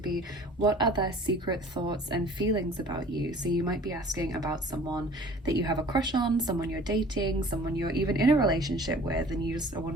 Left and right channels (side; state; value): both; normal; correlation 0.48